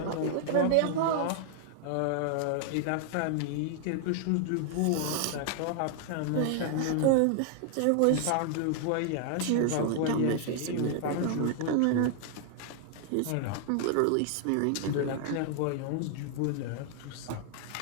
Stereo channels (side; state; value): both; different; correlation 0.00